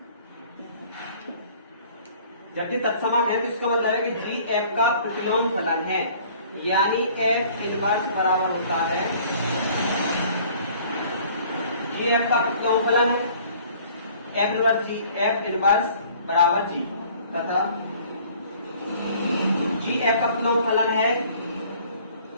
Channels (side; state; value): both; inverted; correlation -0.54